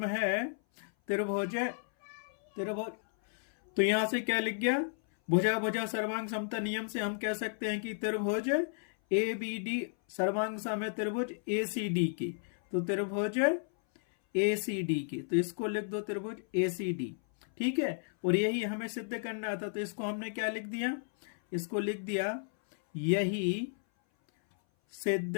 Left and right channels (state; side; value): silent; right; 56 dB below the other